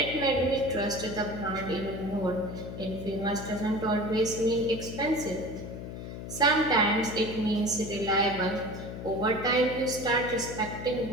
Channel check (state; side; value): noise; left; hum, 9 dB below the sound